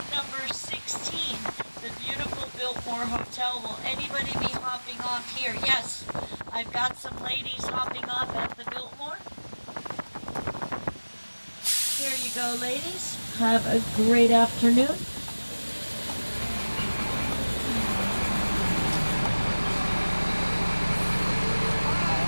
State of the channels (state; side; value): inverted; both; correlation -1.00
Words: number 16, the beautiful Biltmore Hotel. Will anybody be hopping off here? Yes, I've got some ladies hopping off at the Biltmore. Here you go, ladies. Have a great afternoon.